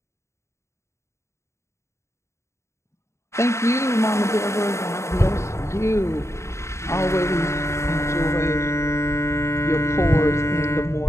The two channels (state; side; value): late; right; 0.14 ms